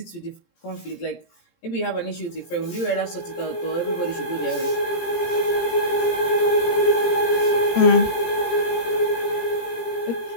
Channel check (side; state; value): right; late; 17 ms